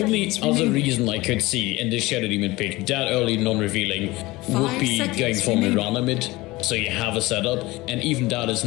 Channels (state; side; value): quieter; right; 20.5 dB